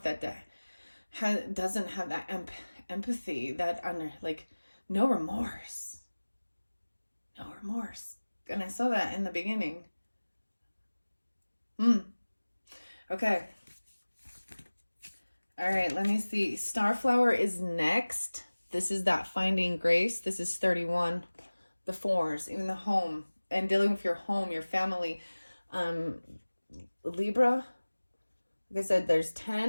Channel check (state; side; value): inverted; both; correlation -1.00